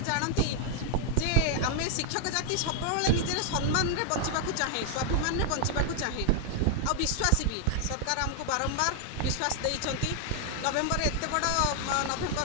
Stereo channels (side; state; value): both; different; correlation 0.00